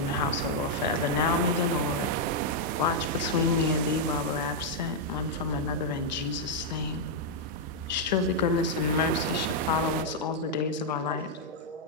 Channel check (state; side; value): normal; both; correlation -0.04